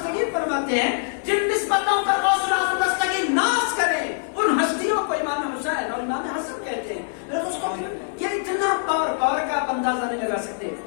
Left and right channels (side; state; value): right; silent; digital silence